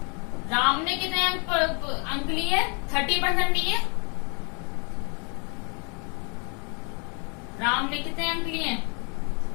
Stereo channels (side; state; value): right; quieter; 35.4 dB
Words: राम ने कितने अंक लिए, 30% लिए। राम ने कितने अंक लिए